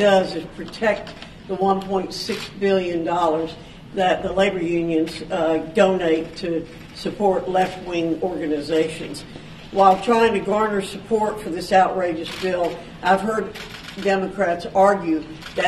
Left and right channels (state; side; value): identical; both; correlation 1.00